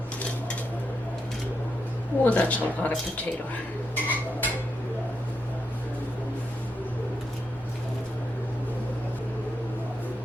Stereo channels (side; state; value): both; normal; correlation 0.83